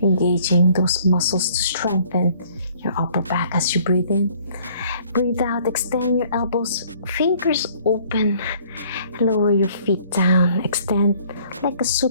engaging those muscles to strengthen your upper back as you breathe in. Breathe out, extend your elbows, fingers open, lower your feet down, extend like a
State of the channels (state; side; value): inverted; both; correlation -0.59